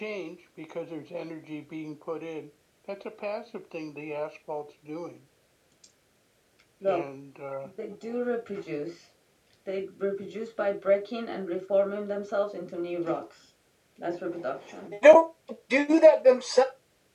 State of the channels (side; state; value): both; identical; correlation 1.00